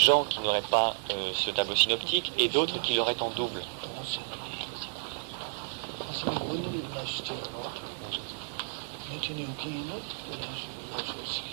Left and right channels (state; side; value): silent; left; 57 dB below the other